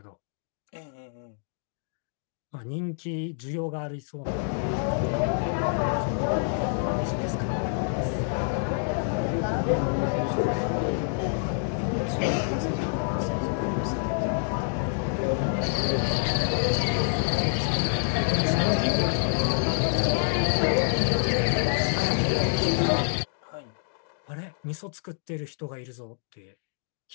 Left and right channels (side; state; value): right; silent; digital silence